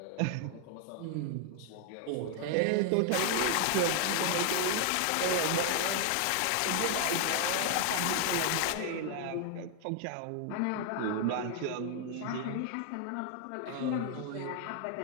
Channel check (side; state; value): both; different; correlation 0.00